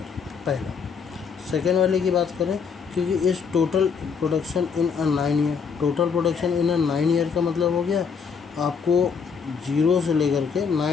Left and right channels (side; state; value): right; quieter; 6.0 dB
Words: पहला। सेकेंड वाले की बात करें, क्योंकि इस total production in a 9 year, total production in a 9 year का मतलब हो गया आपको 0 से लेकर के